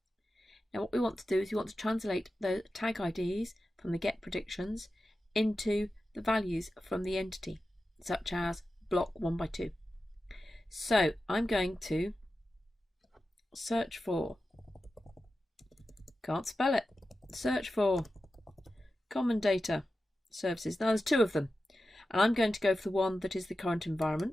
Now what we want to do is we want to translate the tag IDs from the get predictions into the values from the entity, such as block 1 by 2. So I'm going to search for, can't spell it, search for common data services. Now there's 2 of them, and I'm going to go for the one that is the current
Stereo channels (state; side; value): normal; both; correlation 0.92